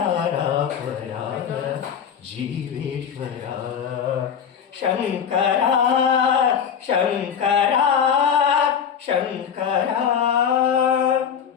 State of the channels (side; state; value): right; quieter; 7.8 dB